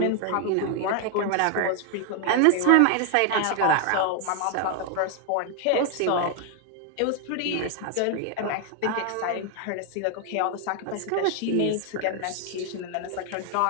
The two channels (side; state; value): both; different; correlation 0.00